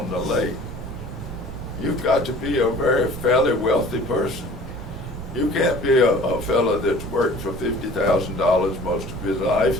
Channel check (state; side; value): normal; both; correlation 0.47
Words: the lake, you've got to be a very fairly wealthy person. You can't be a fella that's worked for $50,000 most of his life